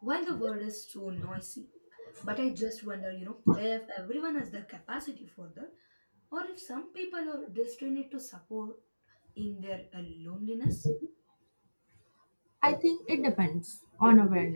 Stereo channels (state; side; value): inverted; both; correlation -1.00